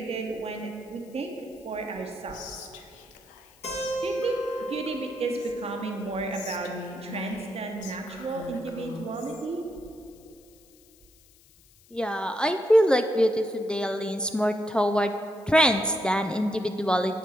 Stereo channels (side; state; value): left; noise; hiss, 28 dB below the sound